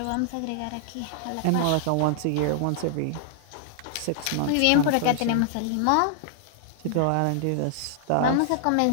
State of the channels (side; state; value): both; different; correlation -0.01